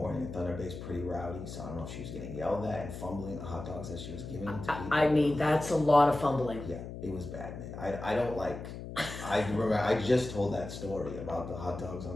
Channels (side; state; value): left; noise; hum, 9 dB below the sound